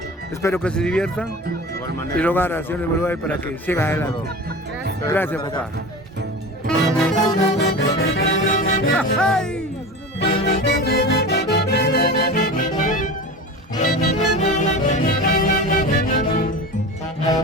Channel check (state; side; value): normal; both; correlation 0.31